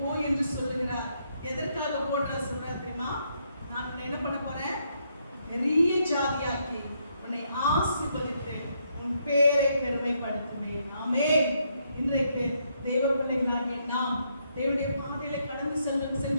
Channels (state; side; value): inverted; both; correlation -0.75